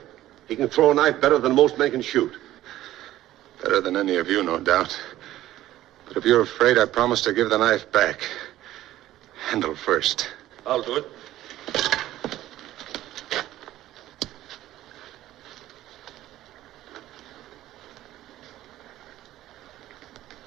He can throw a knife better than most men can shoot. Better than any of you, no doubt. But if you're afraid, I promise to give the knife back. Handle first. I'll do it.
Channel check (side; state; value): left; quieter; 14.3 dB